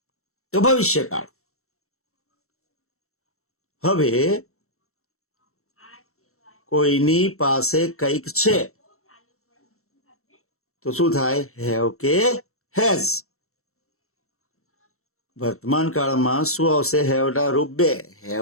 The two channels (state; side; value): late; right; 0.63 ms